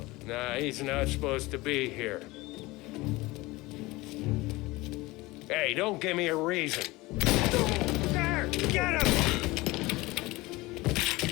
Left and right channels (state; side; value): quieter; right; 21.2 dB